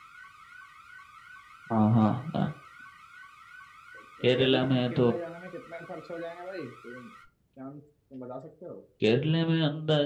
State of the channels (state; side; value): identical; both; correlation 1.00